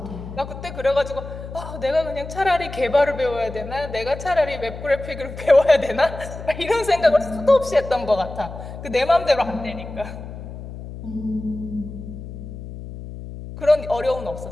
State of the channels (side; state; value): left; noise; hum, 11 dB below the sound